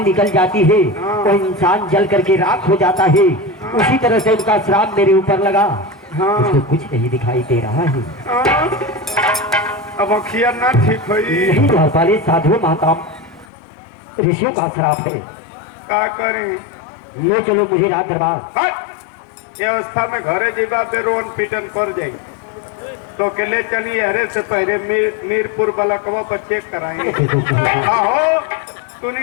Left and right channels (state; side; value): drops out; right; at 13.5 s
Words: निकल जाती है, हाँ। वो इंसान जल करके राख हो जाता है। उसी तरह से उनका श्राप मेरे ऊपर लगा। हाँ। उसको कुछ नहीं दिखाई दे रहा है। हाँ। अब अखिया ना ठीक हुई यही द्वारपाल साधु महात्मा ऋषियों का श्राप है। का करें ले चलो मुझे राज दरबार। हट! ये अवस्था में घरे जीवा पे रोन पीटन कर जाई तो के ले चलिए हरे से पहले मीरपुर बलकवा पर चेक कराएंगे आहो